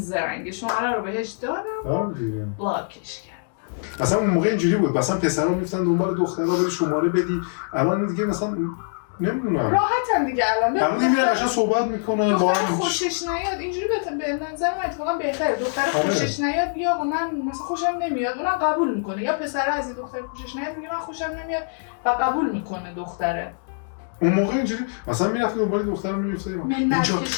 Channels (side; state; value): right; silent; digital silence